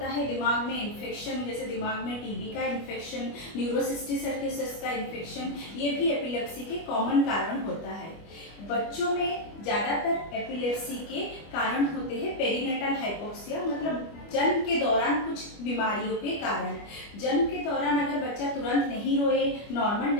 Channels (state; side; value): late; right; 25 ms